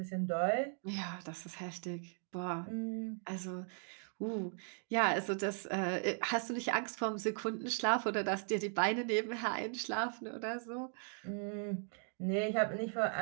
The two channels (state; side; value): silent; left; 52 dB below the other